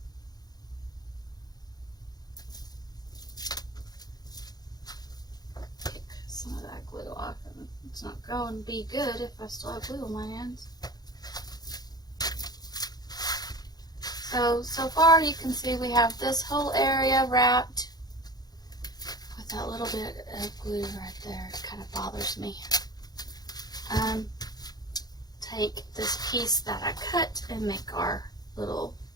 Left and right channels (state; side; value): late; right; 0.19 ms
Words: Pick some of that glue off. It's not going to be good if I still have glue on my hands. So far you can see we have this whole area wrapped with that little bit of glue right there. It kind of bothers me. Take this piece that I cut and make our little